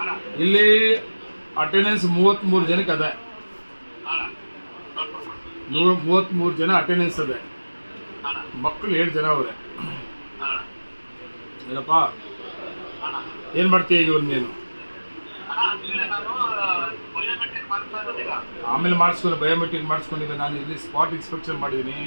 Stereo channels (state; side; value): inverted; both; correlation -1.00